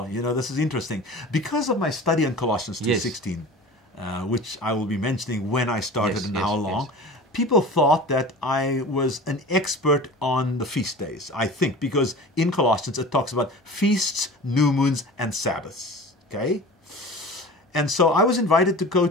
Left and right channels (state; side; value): normal; both; correlation 0.37